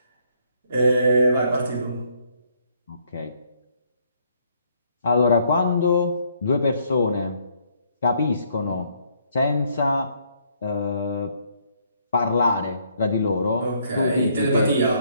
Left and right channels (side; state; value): both; inverted; correlation -0.69